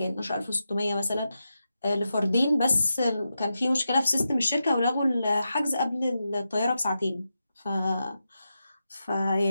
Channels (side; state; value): both; inverted; correlation -0.89